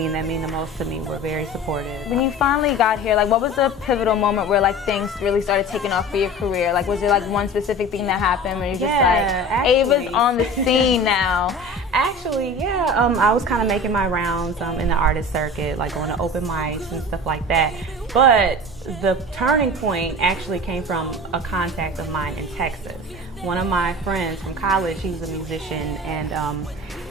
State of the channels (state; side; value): normal; both; correlation 0.37